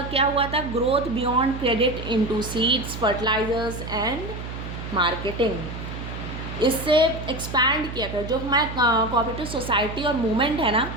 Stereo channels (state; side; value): noise; right; hum, 8 dB below the sound